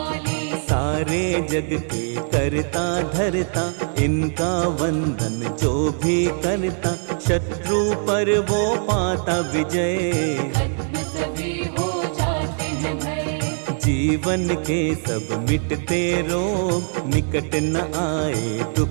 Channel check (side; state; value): left; silent; 64 dB below the other